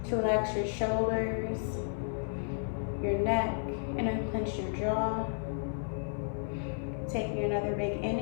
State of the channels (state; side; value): silent; right; 56 dB below the other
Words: to relax your shoulders, your neck, and unclench your jaw. Taking another big